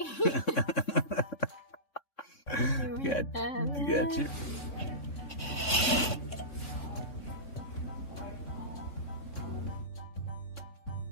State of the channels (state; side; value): late; right; 3.6 ms